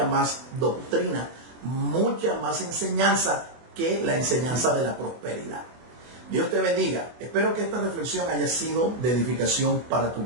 más doctrina, mucha más enseñanza que la enseñanza de la prosperidad. Dios te bendiga. Espero que esta reflexión haya sido de edificación para tu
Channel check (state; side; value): late; left; 24 ms